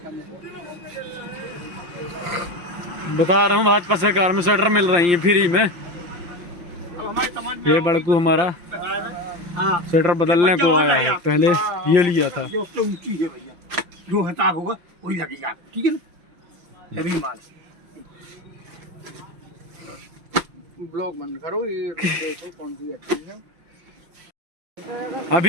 बता रहा हूँ भाजपा सरकार में शटर मिल रही है फ्री में। ये बड़कू हमारा शटर बदलने को आया है, पहले ये लिया था। जो उससे ऊंची है भैया, जो हिसाब होगा वही लगेगा, ठीक है ना। अभी माल ब्लॉग बंद करो, ये देखो कौन सी अच्छी है।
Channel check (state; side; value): late; left; 5.8 ms